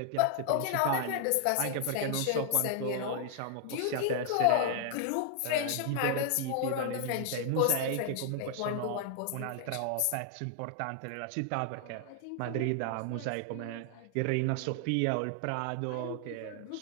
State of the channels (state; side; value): different; both; correlation 0.00